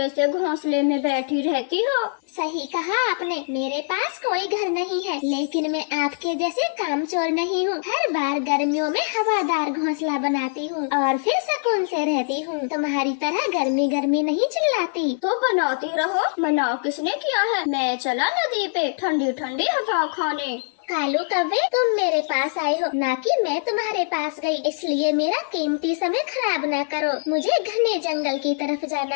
से घोंसले में बैठी रहती हो। सही कहा आपने, मेरे पास कोई घर नहीं है, लेकिन मैं आपके जैसे कामचोर नहीं हूँ। हर बार गर्मियों में हवादार घोंसला बनाती हूँ और फिर सुकून से रहती हूँ। तुम्हारी तरह गर्मी गर्मी नहीं चिल्लाती। तो बनाती रहो, मना किसने किया है। मैं चला नदी पे ठंडी ठंडी हवा खाने। कालू कौवे, तुम मेरे पास आए हो, ना कि मैं तुम्हारे पास गई, इसलिए मेरा कीमती समय खराब ना करो। मुझे घने जंगल की तरफ जाना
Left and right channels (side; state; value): right; silent; digital silence